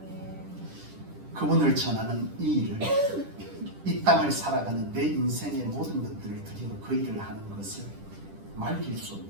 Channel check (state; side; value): late; left; 10 ms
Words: 그분을 전하는 이 일을 이 땅을 살아가는 내 인생의 모든 것들을 드리고 그 일을 하는 것을 말릴 수